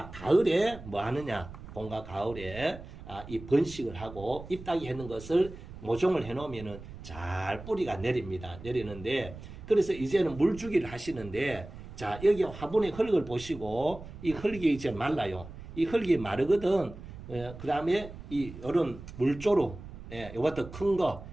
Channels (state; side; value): noise; right; rumble, 14 dB below the sound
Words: 가을에 뭐 하느냐, 봄과 가을에 이 번식을 하고 잎따기 하는 것을 모종을 해 놓으면은 잘 뿌리가 내립니다. 내리는데, 그래서 이제는 물주기를 하시는데, 자 여기 화분의 흙을 보시고 이 흙이 이제 말라요. 이 흙이 마르거든. 그 다음에 이 이런 물조루, 요것도 큰 거